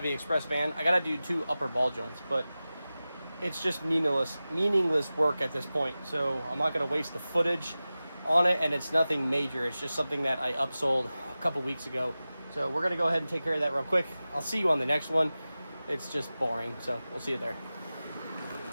Express van. I gotta do 2 upper ball joints, but it's just meaningless work at this point. So I'm not gonna waste the footage on it, and it's nothing major. It's just something that I upsold a couple weeks ago. So we're gonna go ahead and take care of that real quick. I'll see you on the next one. It's just boring, so we'll see you there.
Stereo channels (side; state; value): both; inverted; correlation -0.96